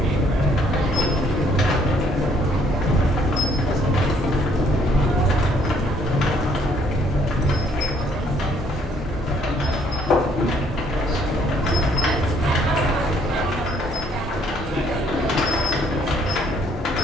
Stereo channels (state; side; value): normal; both; correlation 0.65